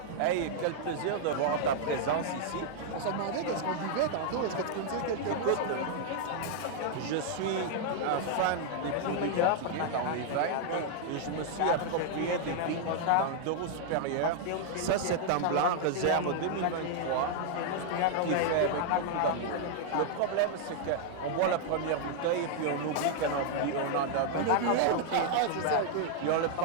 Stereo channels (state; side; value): different; both; correlation -0.01